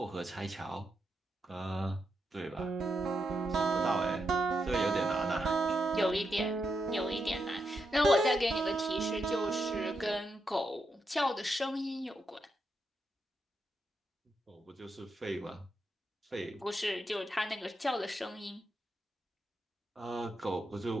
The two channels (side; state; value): both; normal; correlation 0.84